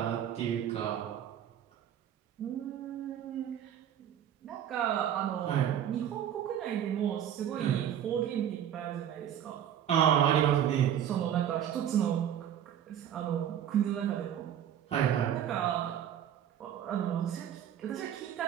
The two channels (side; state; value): left; quieter; 10.0 dB